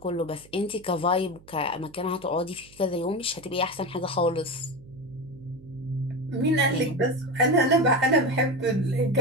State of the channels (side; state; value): right; noise; hum, 24 dB below the sound